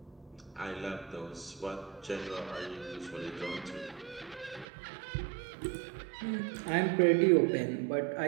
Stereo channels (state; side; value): drops out; left; at 4.7 s